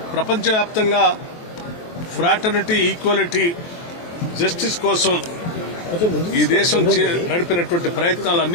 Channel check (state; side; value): late; right; 23 ms